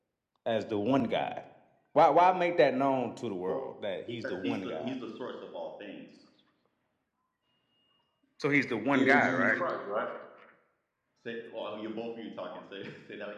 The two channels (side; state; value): both; identical; correlation 1.00